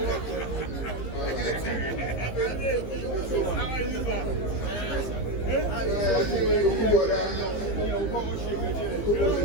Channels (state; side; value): late; right; 15 ms